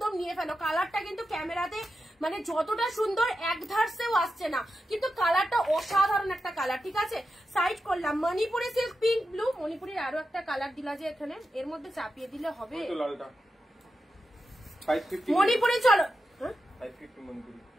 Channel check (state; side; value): normal; both; correlation 0.89